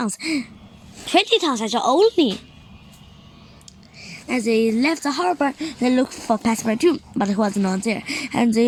20 tons 还是 only? As they left the harbor, they looked for Pastor 2, but he was not there, and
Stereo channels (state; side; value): identical; both; correlation 1.00